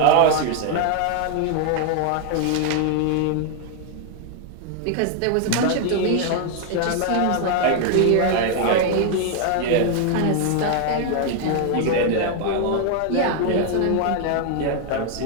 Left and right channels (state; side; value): different; both; correlation 0.00